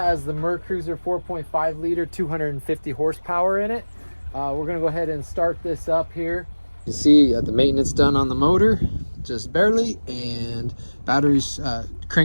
the Mercruiser 4.5 liter, 250 horsepower in it. We're gonna go ahead and start this up here. You see the maintenance done on the motor, just barely, and batteries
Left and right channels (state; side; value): inverted; both; correlation -1.00